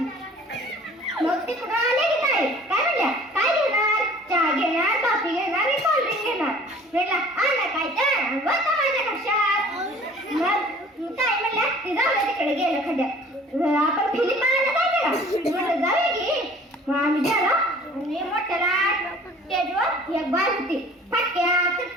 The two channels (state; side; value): normal; both; correlation 0.49